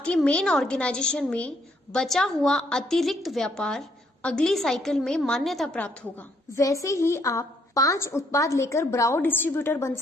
मेन ऑर्गेनाइजेशन में बचा हुआ अतिरिक्त व्यापार अगली साइकिल में मान्यता प्राप्त होगा। वैसे ही आप 5 उत्पाद लेकर ब्राओ डिस्ट्रीब्यूटर बन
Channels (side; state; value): both; normal; correlation 0.70